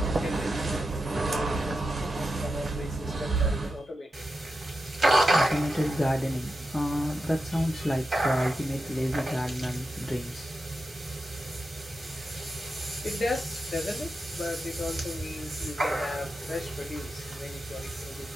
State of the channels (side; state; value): both; normal; correlation 0.89